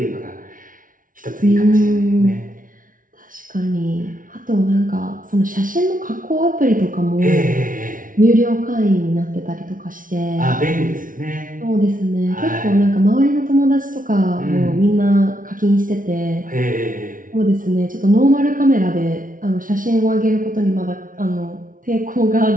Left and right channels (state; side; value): late; left; 0.39 ms